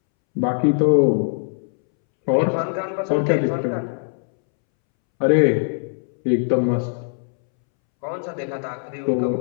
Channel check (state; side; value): silent; right; 65 dB below the other